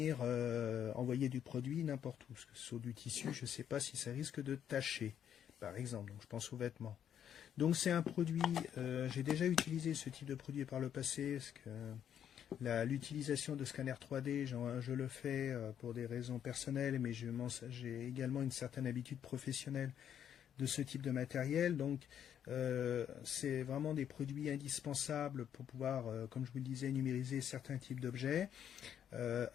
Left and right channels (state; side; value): quieter; right; 9.3 dB